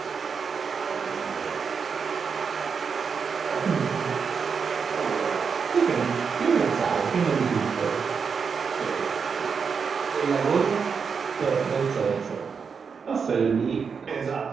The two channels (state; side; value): quieter; left; 5.9 dB